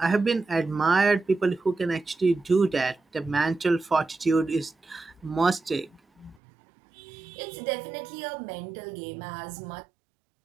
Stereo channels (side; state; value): left; drops out; at 6.4 s